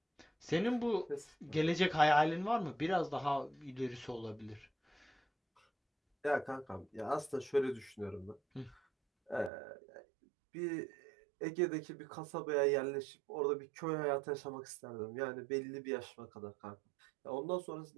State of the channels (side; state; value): left; drops out; at 9.5 s